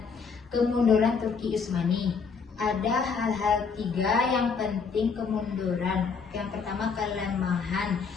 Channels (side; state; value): right; quieter; 5.5 dB